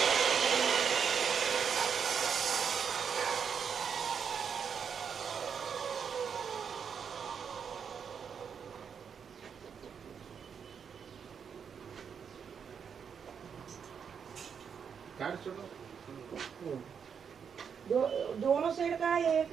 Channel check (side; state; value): left; quieter; 7.0 dB